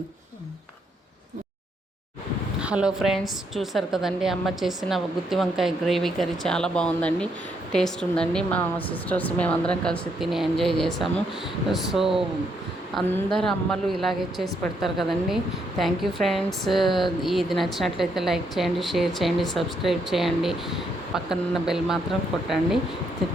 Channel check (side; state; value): both; normal; correlation 0.75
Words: హలో ఫ్రెండ్స్, చూసారు కదండి అమ్మ చేసిన గుత్తి వంకాయ గ్రేవీ కర్రీ చాలా బాగుందండి. టేస్ట్ ఉందండి. మా సిస్టర్స్ మేమందరం కలిసి తిని ఎంజాయ్ చేసాము. సో అందరు అమ్మలు ఇలాగే చేసి పెడతారు కదండి. Thank you friends. ఇది నచ్చినట్లయితే లైక్ చేయండి, షేర్ చేయండి, సబ్స్క్రైబ్ చేయండి. పక్కనున్న బెల్ మాత్రం కొట్టండి.